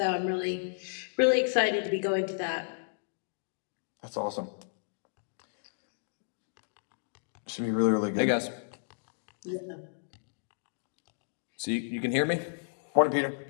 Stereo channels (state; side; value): silent; right; digital silence